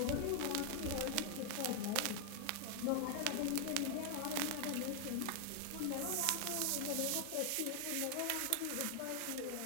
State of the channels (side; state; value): both; different; correlation 0.00